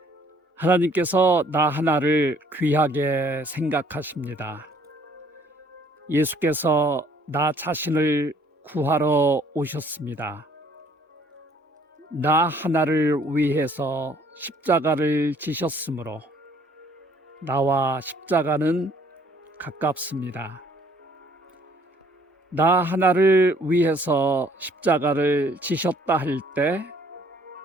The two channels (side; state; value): both; normal; correlation 0.60